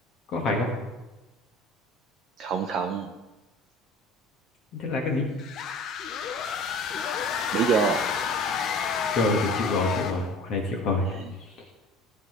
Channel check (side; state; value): both; normal; correlation 0.42